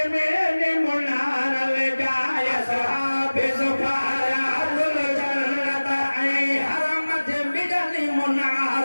मेले मुनार ले जाय साहबे सुपारियाजुल जन्नत ऐं हरम जे मिलनी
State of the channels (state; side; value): inverted; both; correlation -1.00